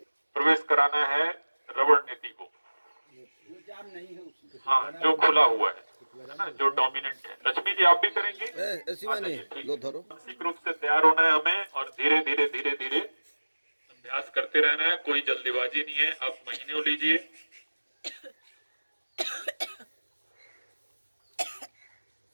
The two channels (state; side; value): inverted; both; correlation -1.00